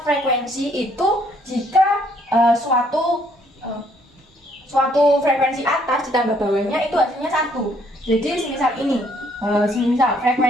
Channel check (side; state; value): both; normal; correlation 0.66